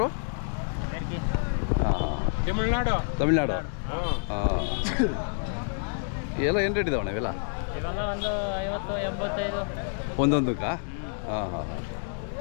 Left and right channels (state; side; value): silent; right; 59 dB below the other